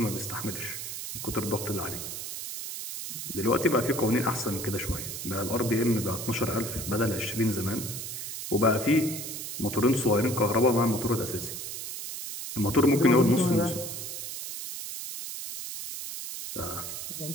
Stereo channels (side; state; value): right; noise; hiss, 7 dB below the sound